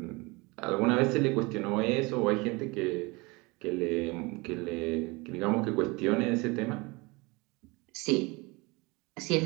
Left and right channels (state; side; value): quieter; left; 25.5 dB